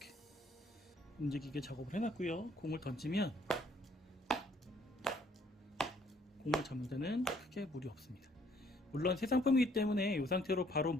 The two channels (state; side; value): normal; both; correlation 0.64